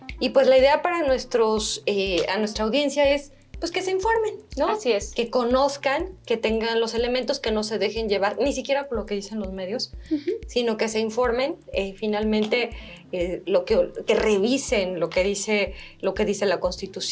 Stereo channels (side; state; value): both; identical; correlation 1.00